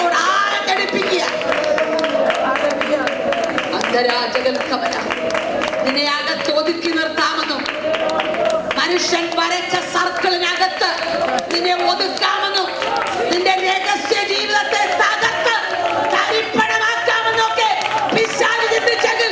ആഴടിപ്പിക്കുക. നിന്നെ അകത്ത് ഒതുക്കി നിർത്താമെന്നും, മനുഷ്യൻ വരച്ച സർക്കിളിനകത്ത് നിന്നെ ഒതുക്കാമെന്നും, നിന്റെ രഹസ്യ ജീവിതത്തെ തകർത്ത് തരിപ്പണമാക്കാമെന്നൊക്കെ പിശാച് ചിന്തിച്ചെങ്കിൽ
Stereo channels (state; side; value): identical; both; correlation 1.00